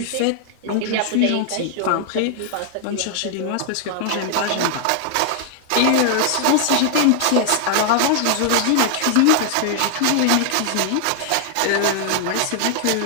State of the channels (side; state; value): both; different; correlation 0.00